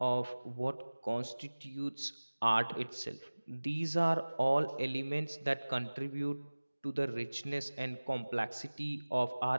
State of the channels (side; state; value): both; inverted; correlation -1.00